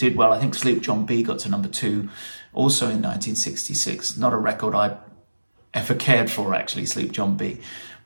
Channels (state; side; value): inverted; both; correlation -1.00